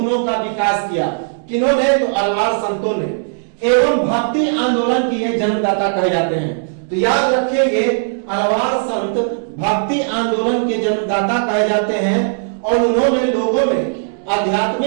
का विकास किया। किन्होंने? तो अलवार संतों ने, एवं भक्ति आंदोलन के ये जन्मदाता कहे जाते हैं। तो याद रखेंगे, अलवार संत भक्ति आंदोलन के जन्मदाता कहे जाते हैं और उन्होंने लोगों में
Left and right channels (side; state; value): left; silent; digital silence